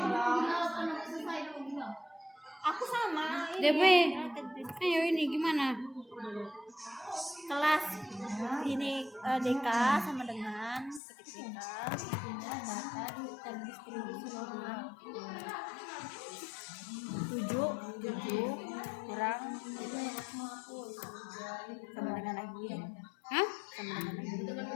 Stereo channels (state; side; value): drops out; right; at 11.0 s